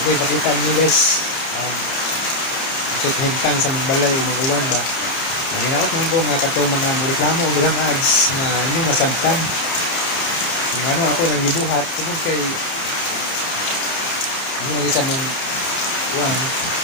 ipakita nyo guys ang hintang sa mga balay o mag-uwan ba. Nanginaot naman ko nga kato mga reklamo o daghang ads na inyong masabtan. Kung ano ako nang gibuhat tungkol kay ano lagi sa mong uwan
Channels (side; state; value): right; late; 31 ms